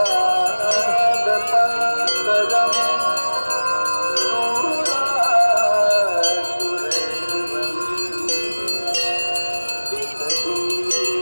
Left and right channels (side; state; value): both; inverted; correlation -1.00